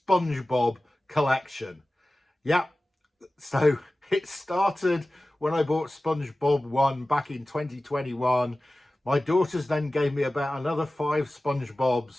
collection. Yep. So it started when I bought SpongeBob 1 back in 2021. My daughters then gave me about another 5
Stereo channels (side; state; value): both; normal; correlation 0.96